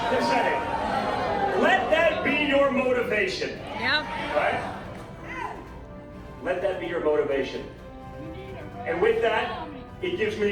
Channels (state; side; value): identical; both; correlation 1.00